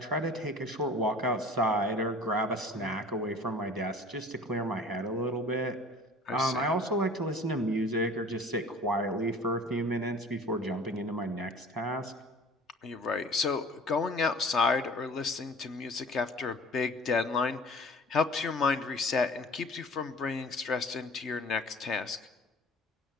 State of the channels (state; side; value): normal; both; correlation 0.45